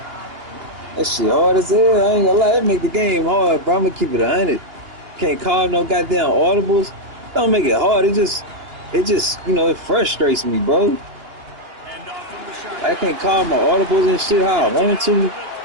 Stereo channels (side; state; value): left; late; 2.9 ms